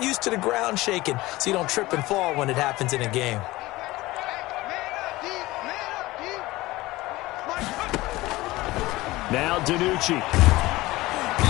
used to the ground shaking so you don't trip and fall when it happens in a game. Now DiNucci.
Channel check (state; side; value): quieter; right; 19.2 dB